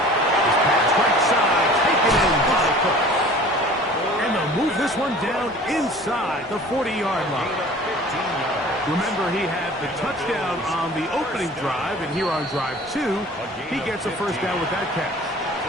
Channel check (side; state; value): both; normal; correlation 0.45